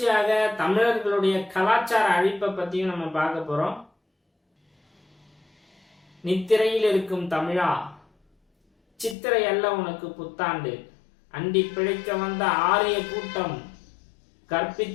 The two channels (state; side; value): drops out; right; at 9.2 s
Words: தமிழர்களுடைய கலாச்சார அழிப்பை பற்றியும் நம்ம பார்க்க போகிறோம். நித்திரையில் இருக்கும் தமிழா, சித்திரை அல்ல உனக்கு புத்தாண்டு, அண்டி பிழைக்க வந்த ஆரிய கூட்டம்